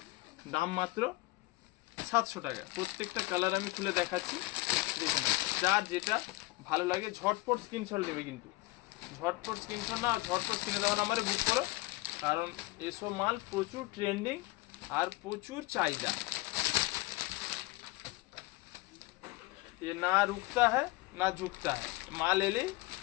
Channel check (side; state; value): right; quieter; 21.6 dB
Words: দাম মাত্র 700 টাকা। প্রত্যেকটা কালার আমি খুলে দেখাচ্ছি, দেখে না, যার যেটা ভালো লাগে ঝটপট স্ক্রিনশট নেবে, কিন্তু ঝটপট স্ক্রিনশট না, ঝটপট স্ক্রিনে দেওয়া নাম্বারে বুক করো, কারণ এসব মাল প্রচুর ট্রেন্ডিং আর প্রচুর চাহিদা। ये ना रुकता है ना झुकता है, মাল এলেই